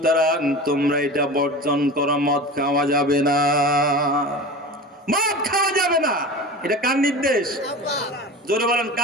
তোমরা এটা বর্জন করো, মদ খাওয়া যাবে না, মদ খাওয়া যাবে না। এটা কার নির্দেশ? জোরে বলেন,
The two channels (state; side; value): normal; both; correlation 0.32